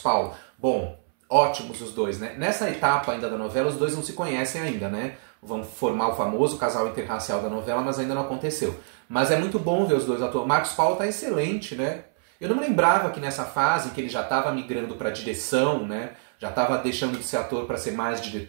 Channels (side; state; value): left; silent; 61 dB below the other